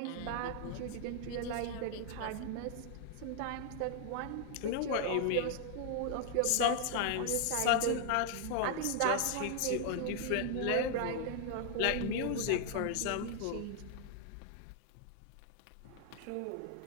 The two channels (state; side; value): different; both; correlation 0.00